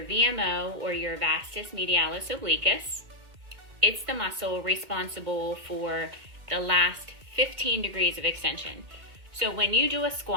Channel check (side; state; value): left; late; 2.0 ms